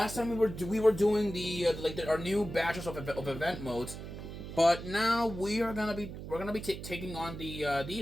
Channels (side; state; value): right; noise; hum, 10 dB below the sound